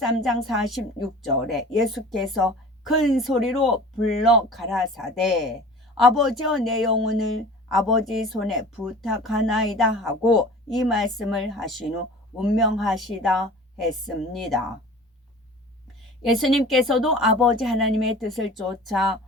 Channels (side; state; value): both; normal; correlation 0.42